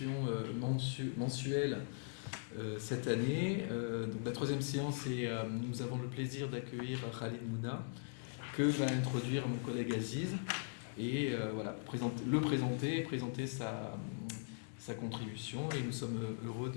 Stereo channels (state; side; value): silent; right; digital silence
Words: mensuelle cette année. Donc la troisième séance et nous avons le plaisir d'accueillir Khalid Mouna que va introduire mon collègue Aziz. Et voilà, présenter sa contribution et nous sommes heureux